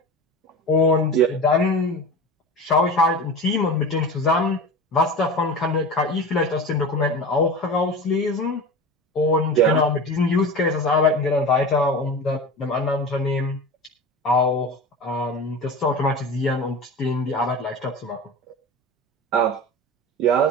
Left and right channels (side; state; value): both; normal; correlation 0.31